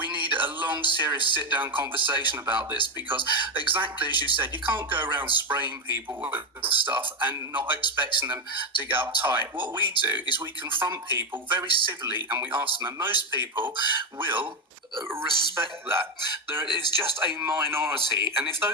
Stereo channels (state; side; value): normal; both; correlation 0.09